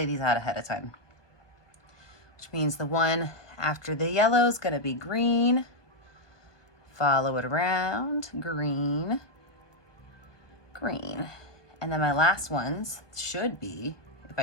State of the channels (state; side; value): late; right; 1.2 ms